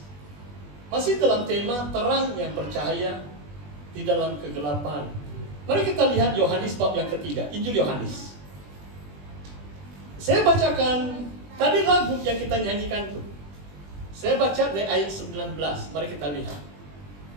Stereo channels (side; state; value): left; late; 20 ms